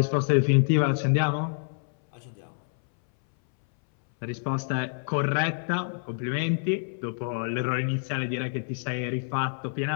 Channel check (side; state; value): right; silent; 60 dB below the other